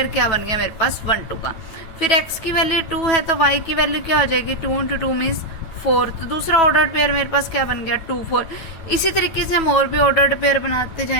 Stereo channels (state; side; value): late; right; 9.2 ms